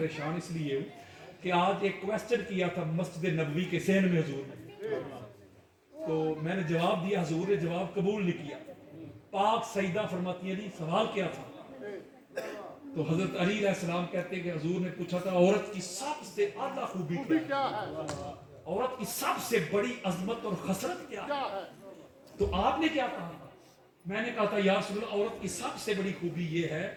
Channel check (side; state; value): both; identical; correlation 1.00